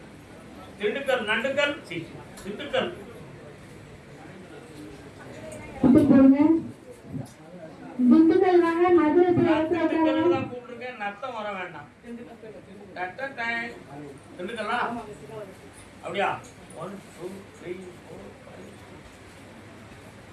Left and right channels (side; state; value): both; identical; correlation 1.00